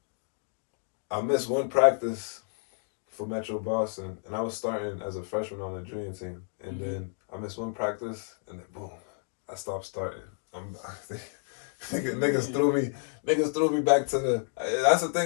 I missed one practice for Metro Boston, and I was starting as a freshman on the junior team, and then I missed one practice, and then boom, I stopped starting. Niggas threw me back to the. That's the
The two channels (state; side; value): silent; right; 58 dB below the other